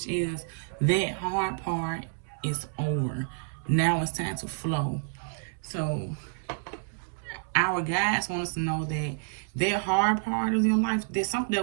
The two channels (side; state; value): left; silent; 59 dB below the other